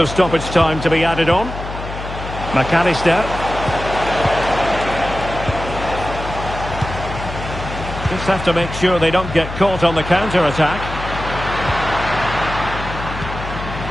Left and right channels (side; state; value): left; noise; hum, 9 dB below the sound